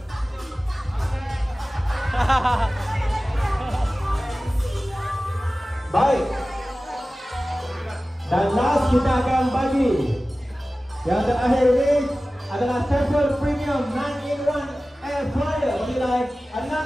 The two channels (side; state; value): both; normal; correlation 0.96